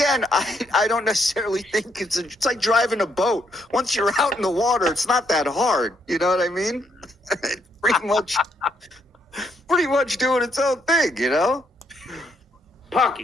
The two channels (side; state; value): both; normal; correlation 0.74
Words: I don't necessarily think it's like driving a boat. Once you're out in the water, it's not that hard. You know what I mean? It's pretty much doing its own thing, you know?